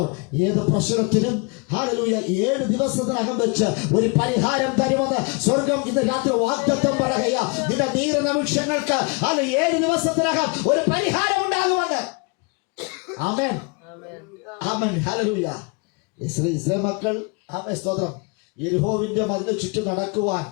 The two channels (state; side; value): quieter; right; 31.6 dB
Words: ഏത് പ്രശ്നത്തിനും ഹല്ലേലൂയ 7 ദിവസത്തിനകം വെച്ച് ഒരു പരിഹാരം തരുമെന്ന് സ്വർഗം ഇന്ന് രാത്രി വാഗ്ദത്തം പറയുക. നിന്റെ നീറുന്ന വിഷയങ്ങൾക്ക് അത് 7 ദിവസത്തിനകം ഒരു പരിഹാരം ഉണ്ടാകുമെന്ന്. ആമേൻ, ആമേൻ, ഹല്ലേലൂയ. ഇസ്രായേൽ മക്കൾ ആമേൻ സ്തോത്രം യെരിഹോവിന്റെ മതിലിന് ചുറ്റും നടക്കുവാൻ,